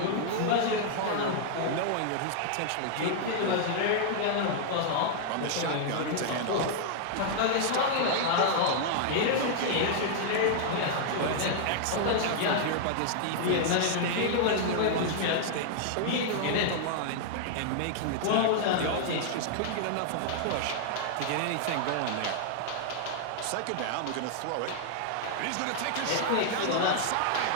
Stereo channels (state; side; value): different; both; correlation -0.01